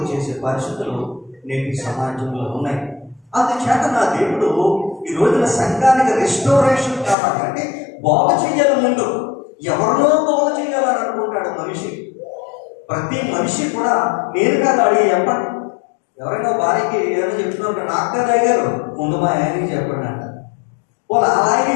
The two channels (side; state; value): right; drops out; at 7.2 s